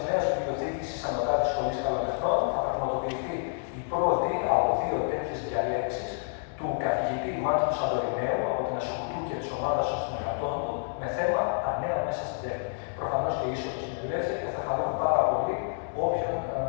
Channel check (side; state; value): right; silent; 59 dB below the other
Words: Νέας Βιβλιοθήκης της Ανωτάτης Σχολής Καλοτεχνών θα πραγματοποιηθεί η πρώτη από 2 τέτοιες διαλέξεις του καθηγητή Μάτιου Σαντορινέου από την Ασχολού και της ομάδας των συνεργατών του με θέμα τα νέα μέσα στην τέχνη. Προφανώς και η είσοδος είναι ελεύθερη και θα χαρούμε πάρα πολύ